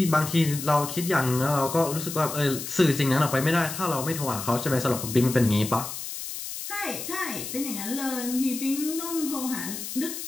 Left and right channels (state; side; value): noise; left; hiss, 7 dB below the sound